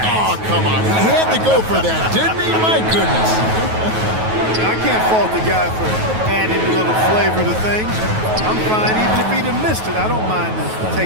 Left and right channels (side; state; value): left; late; 9.3 ms